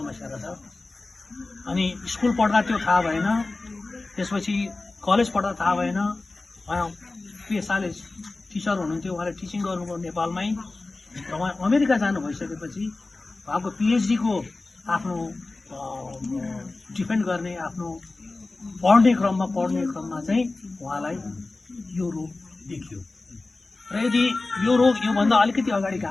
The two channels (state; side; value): quieter; right; 3.3 dB